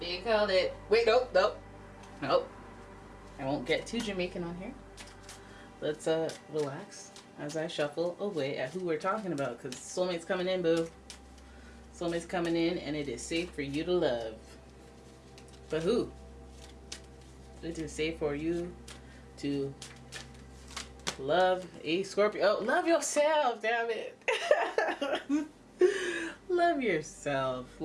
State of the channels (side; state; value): both; identical; correlation 1.00